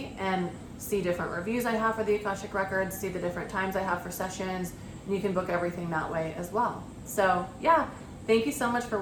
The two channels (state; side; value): identical; both; correlation 1.00